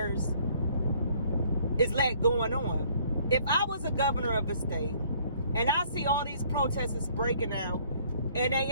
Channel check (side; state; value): both; inverted; correlation -0.60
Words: is let going on. If I was a governor of a state and I see all these protesters breaking out and